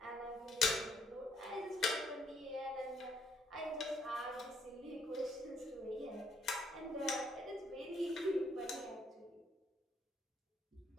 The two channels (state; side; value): normal; both; correlation 0.69